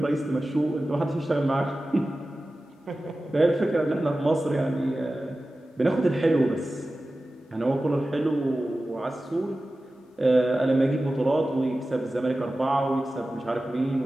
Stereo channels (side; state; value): both; normal; correlation 0.95